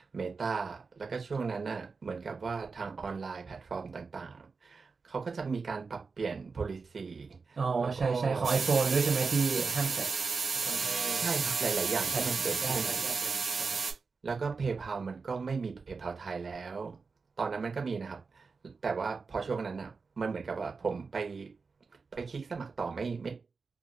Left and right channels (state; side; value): quieter; left; 4.6 dB